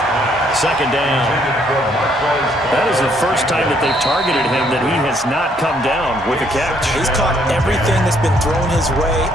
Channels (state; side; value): normal; both; correlation 0.68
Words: second down. That is the first time that they've targeted him that he has not come down with a catch. He's caught everything that's been thrown his way.